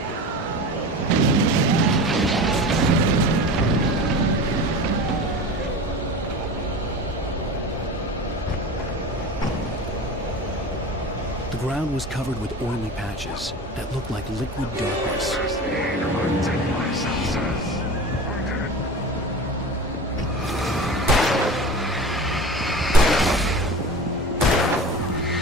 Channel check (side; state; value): both; normal; correlation 0.33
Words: The ground was covered with oily patches that looked like liquid darkness.